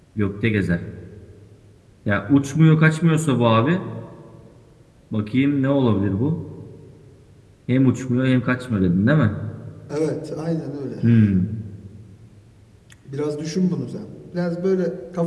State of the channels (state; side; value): identical; both; correlation 1.00